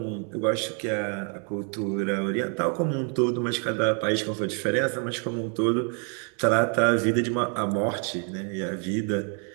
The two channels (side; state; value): left; quieter; 39.4 dB